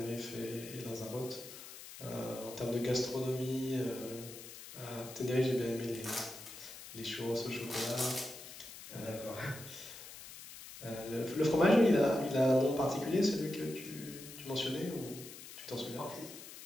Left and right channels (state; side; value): noise; left; hiss, 14 dB below the sound